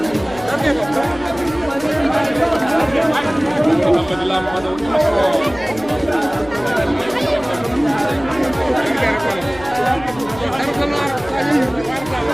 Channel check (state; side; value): noise; left; hum, 17 dB below the sound